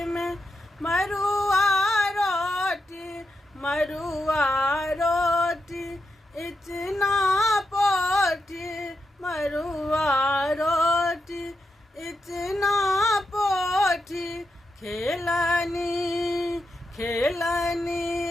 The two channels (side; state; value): both; normal; correlation 0.86